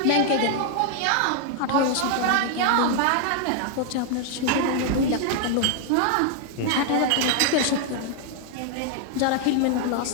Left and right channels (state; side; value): different; both; correlation 0.00